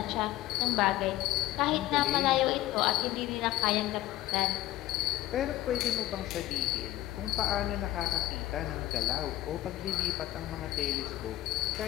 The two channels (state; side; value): quieter; right; 15.3 dB